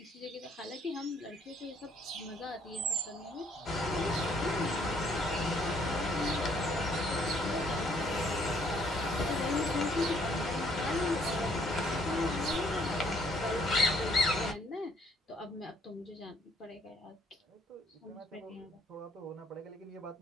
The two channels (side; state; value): both; normal; correlation 0.66